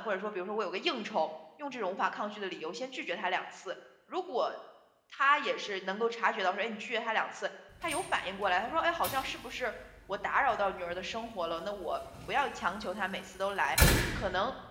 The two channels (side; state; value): both; identical; correlation 1.00